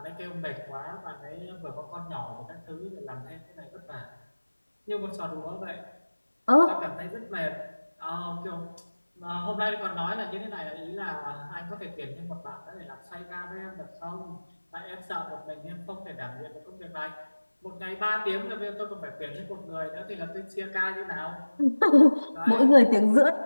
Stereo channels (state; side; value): inverted; both; correlation -1.00